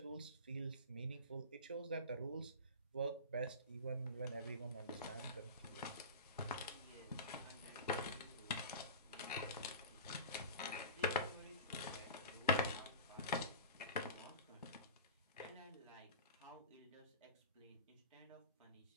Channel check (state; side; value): inverted; both; correlation -0.32